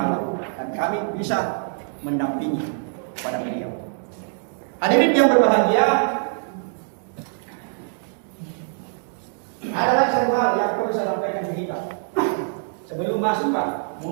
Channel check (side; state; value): left; silent; digital silence